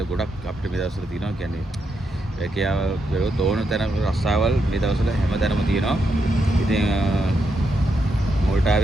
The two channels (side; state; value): both; normal; correlation 0.82